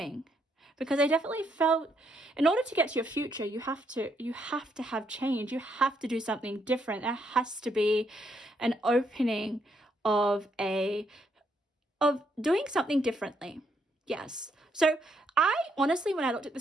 Because I definitely felt in order to get to your future, you have to have change. You have to do something different. There has to be an opening of doing something differently. Yes. So I honestly, when I looked at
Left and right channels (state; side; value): normal; both; correlation 0.75